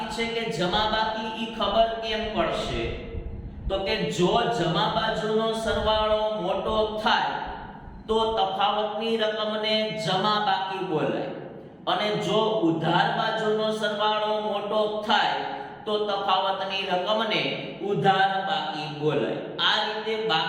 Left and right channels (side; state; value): both; identical; correlation 1.00